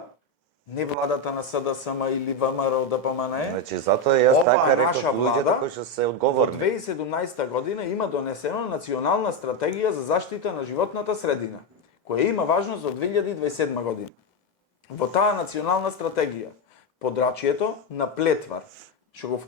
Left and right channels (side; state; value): both; normal; correlation 0.09